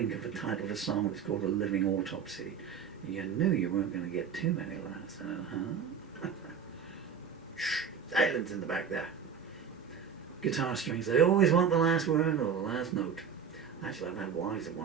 of the title of a song that's called A Living Autopsy. You knew you weren't going to get too many laughs, huh? Shh, silence in the back there. Guitar strings, they always want the last word or the last note. Actually, I've had wives that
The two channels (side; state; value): left; quieter; 7.0 dB